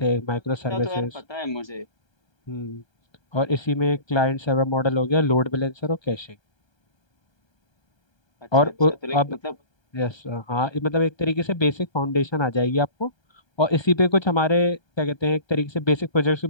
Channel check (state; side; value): late; right; 1.3 ms